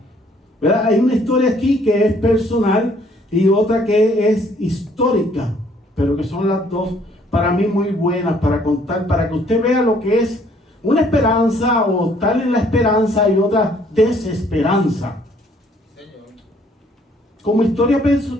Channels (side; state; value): both; normal; correlation 0.62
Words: ¿Verdad? Hay una historia aquí que es personal y otra que es histórica, pero que son las dos para mí muy buenas para contar, para que usted vea lo que es una esperanza o tal en la esperanza y otra desesperanza. Como historia